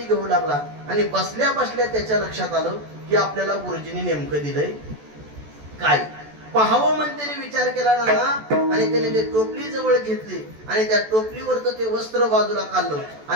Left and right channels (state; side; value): late; left; 14 ms